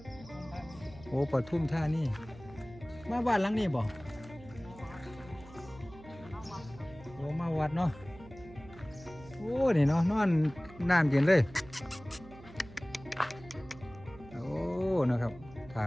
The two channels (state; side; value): noise; right; hum, 19 dB below the sound